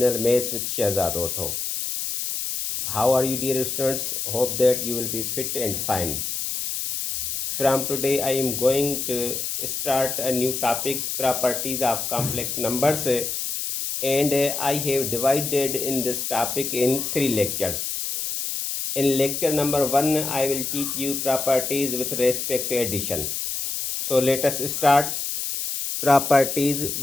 Maths with Shehzad Otho. How are you dear students? Hope that you will be fit and fine. From today I am going to start a new topic, properties of complex numbers, and I have divided in this topic in 3 lectures. In lecture number 1 I will teach you properties with respect to addition. So let us start properties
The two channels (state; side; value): noise; left; hiss, 3 dB below the sound